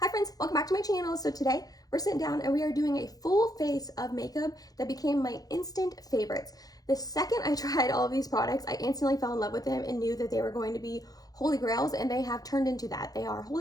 friends, welcome back to my channel. So today we're sitting down and we are doing a full face of makeup that became my instant favorites. The second I tried all of these products, I instantly fell in love with them and knew that they were going to be holy grails, and they have turned into that. They are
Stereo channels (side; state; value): right; late; 0.18 ms